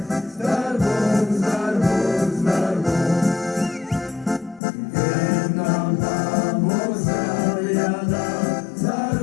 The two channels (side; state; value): right; drops out; at 4.6 s